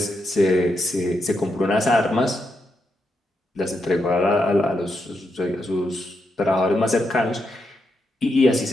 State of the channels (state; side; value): normal; both; correlation 0.83